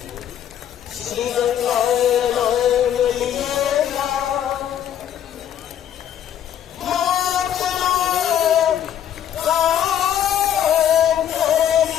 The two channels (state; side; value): quieter; right; 10.3 dB